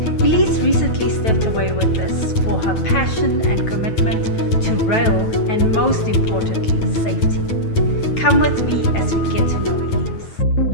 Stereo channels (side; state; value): right; late; 9.1 ms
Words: Elize recently stepped away with this for her passion and commitment to rail and, most importantly, safety. Come with me as we get to know Elize.